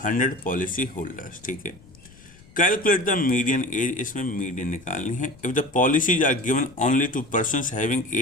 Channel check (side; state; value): left; noise; rumble, 24 dB below the sound